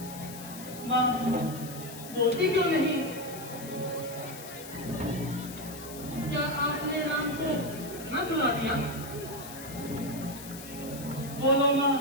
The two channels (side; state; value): left; noise; hiss, 13 dB below the sound